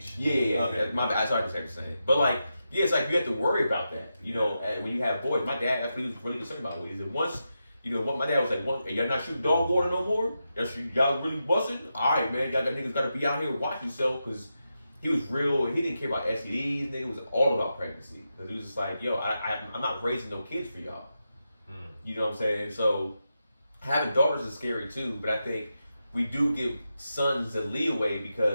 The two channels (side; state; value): both; inverted; correlation -0.88